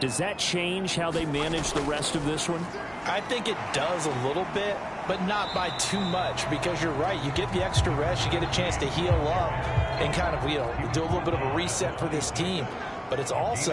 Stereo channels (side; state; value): both; identical; correlation 1.00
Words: that change how they manage the rest of this one? I think it does a little bit, but not by too much, because you're right. You get the extra rest, you get a chance to heal up and kind of, do a little bit of a reset for this team. But it's